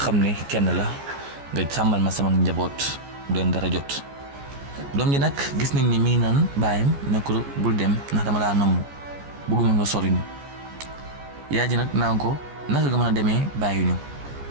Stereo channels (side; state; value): left; late; 14 ms